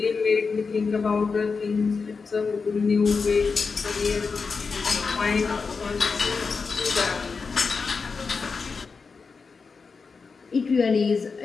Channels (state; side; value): quieter; right; 4.9 dB